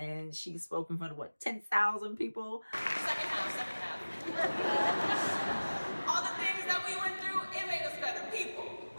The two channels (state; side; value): inverted; both; correlation -1.00